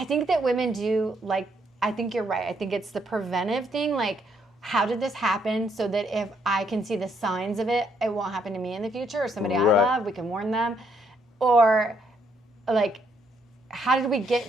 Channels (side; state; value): both; normal; correlation 0.72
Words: think that women do, like, I think you're right. I think it's the preventive thing, like, how did this happen so that if I can see the signs of it, it won't happen to me in the future, or somebody I love, we can warn them. Or, like, how did we